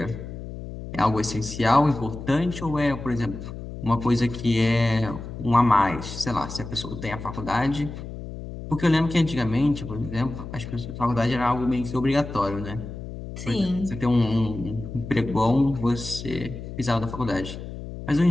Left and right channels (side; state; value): left; noise; hum, 10 dB below the sound